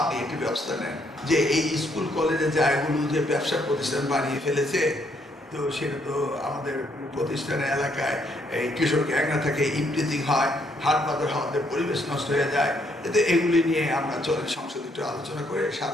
একটি ব্যবস্থা নেন। যে এই স্কুল কলেজের জায়গাগুলো যে ব্যবসা প্রতিষ্ঠান বানিয়ে ফেলেছে, তো সেটা তো আমাদের প্রতিষ্ঠানের এলাকায় এই কৃষক গ্যাংরা থেকে ইমপ্রিজিং হয়, হাট বাজার হওয়াতে পরিবেশ নষ্ট হয়ে যায়। এতে এগুলি নিয়ে আমরা চলেন সংসদে একটু আলোচনা করে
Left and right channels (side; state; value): both; normal; correlation 0.71